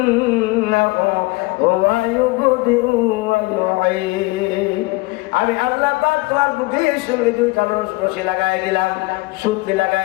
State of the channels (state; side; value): quieter; right; 22.9 dB